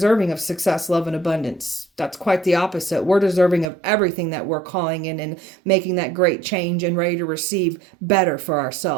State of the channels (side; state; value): left; drops out; at 3.7 s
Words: of success, love, and abundance. That's quite the opposite. We're deserving of everything that we're calling in and making that great change and ready to receive better for